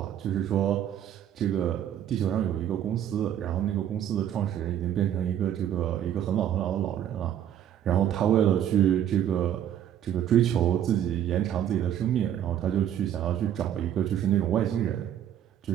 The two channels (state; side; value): quieter; left; 10.4 dB